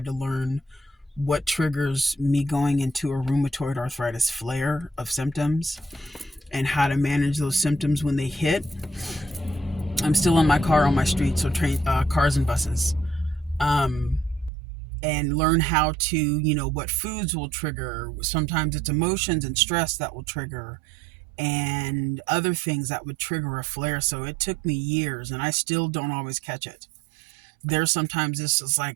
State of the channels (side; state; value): left; drops out; at 14.5 s